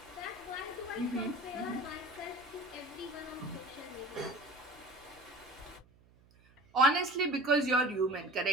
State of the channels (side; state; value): right; noise; hum, 28 dB below the sound